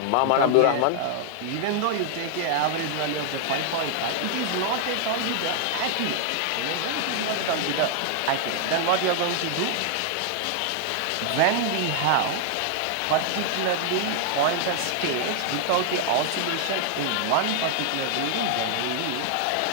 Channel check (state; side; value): different; both; correlation 0.00